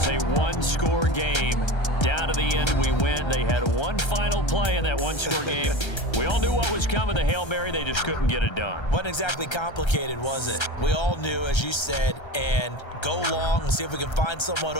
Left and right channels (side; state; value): right; late; 1.3 ms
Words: a one-score game. Down to the end we went. They had one final play in that one-score game. We all knew what was coming, the Hail Mary. They just couldn't get it done. Wasn't exactly complicated, was it? We all knew, as you said, and go long and see if we can find someone